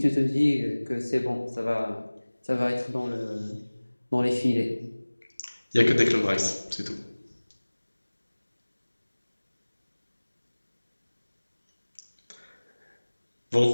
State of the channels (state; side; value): inverted; both; correlation -1.00